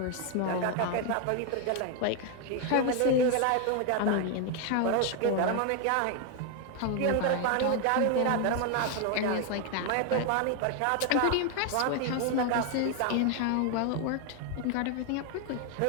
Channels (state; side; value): different; both; correlation 0.01